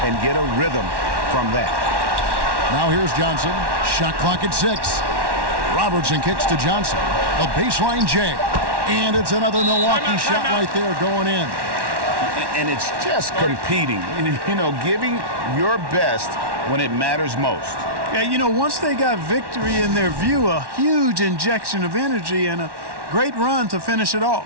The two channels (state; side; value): late; left; 1.1 ms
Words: and get a rhythm from that. Now here's Johnson. Shot clock at 6. Robertson kicks to Johnson. A baseline J. And it's another Milwaukee shot right there going in. And it's just competing, you know, giving your best when it matters most. Yeah, you know, once they got victory in their view, a huge injection of energy and a great run to finish it